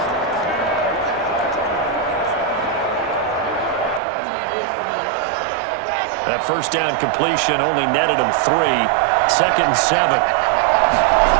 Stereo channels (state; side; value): drops out; left; at 4.0 s